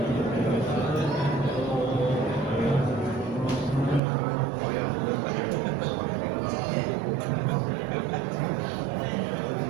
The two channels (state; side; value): drops out; left; at 4.0 s